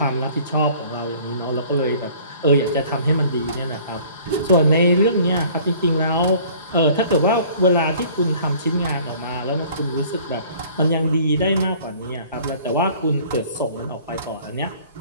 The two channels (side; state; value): both; inverted; correlation -0.51